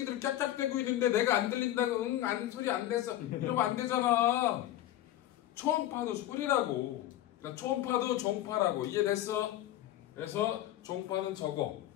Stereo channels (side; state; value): right; quieter; 13.5 dB